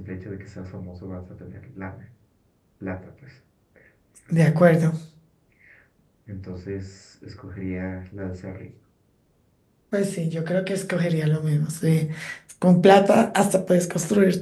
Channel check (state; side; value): identical; both; correlation 1.00